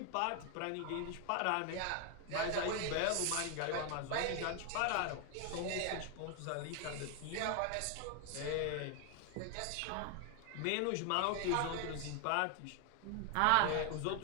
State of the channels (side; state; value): both; different; correlation 0.00